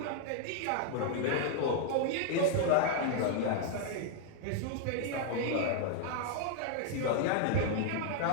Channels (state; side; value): different; both; correlation 0.00